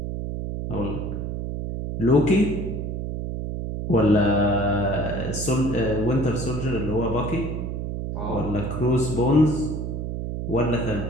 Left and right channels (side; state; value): right; noise; hum, 4 dB below the sound